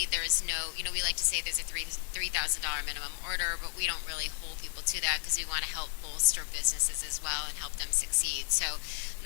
there's no, we like to say there's a $3,000 minimum order, but we don't really hold people to that, because we want to help bolster businesses as well and help them succeed. So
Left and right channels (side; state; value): right; silent; digital silence